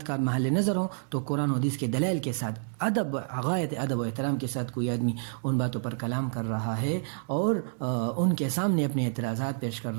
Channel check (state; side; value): silent; left; 59 dB below the other